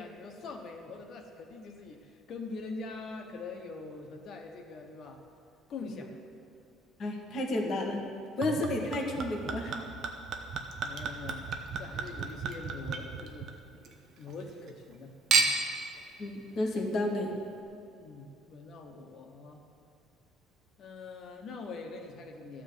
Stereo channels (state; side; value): normal; both; correlation 0.61